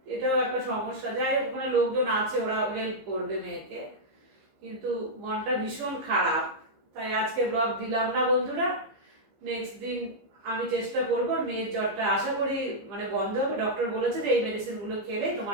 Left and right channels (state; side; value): late; left; 15 ms